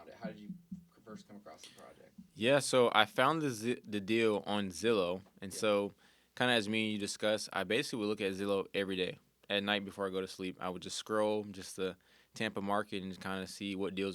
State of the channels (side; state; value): both; identical; correlation 1.00